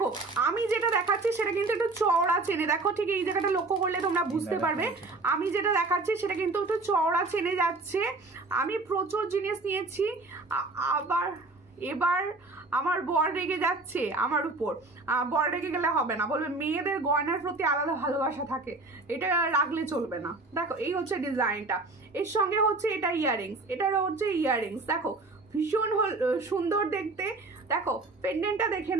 আমি যেটা দেখাচ্ছি সেটা কিন্তু একটু চওড়া চেনে, দেখো ঠিক এই জায়গাটা লক্ষ্য করলে তোমরা বুঝতে পারবে। আমি যেটা দেখাচ্ছি সেটা কিন্তু একটু চওড়া চেনে যাচ্ছে। আমি প্রচুর জিনিস নিয়েছি, আবার এবার আমার বর রেগে যাচ্ছে আমার উপর। বর রেগে গেলে হবে না, বলবে মেয়েদের গয়নার প্রতি আলাদা ভালোবাসা থাকে, এটা রাখলে চলবে না। দেখো এই হচ্ছে ডিজাইনটা, এর সঙ্গে হচ্ছে এটা ইয়াররিংস, এটারও হচ্ছে ইয়াররিংস। দেখো ভীষণ সুন্দর দেখতে। দেখো পেন্ডেন্টটা দেখে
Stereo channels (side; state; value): left; quieter; 3.3 dB